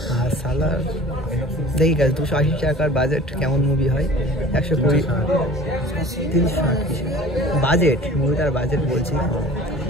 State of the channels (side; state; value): both; normal; correlation 0.44